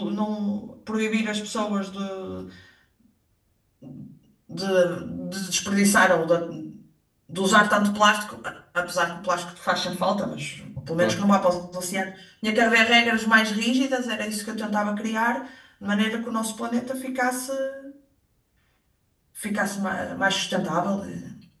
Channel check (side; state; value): both; identical; correlation 1.00